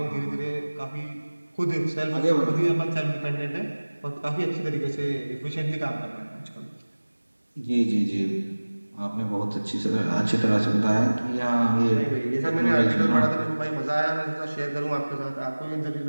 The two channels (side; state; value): both; inverted; correlation -1.00